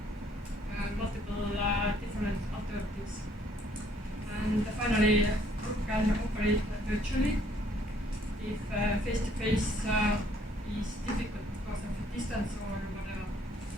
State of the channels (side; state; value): both; normal; correlation 0.64